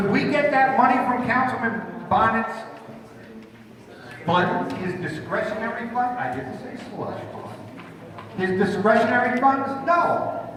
we get that money from Councilman Bonin's fund, his discretionary fund? I didn't say slush fund. His discretionary funds? No.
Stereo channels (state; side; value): identical; both; correlation 1.00